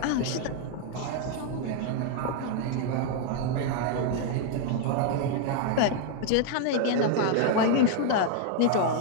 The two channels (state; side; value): different; both; correlation 0.00